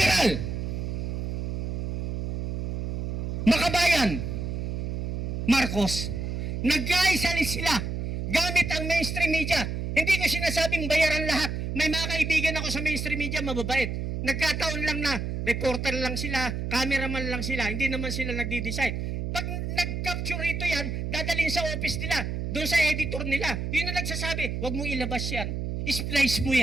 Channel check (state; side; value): noise; right; hum, 3 dB below the sound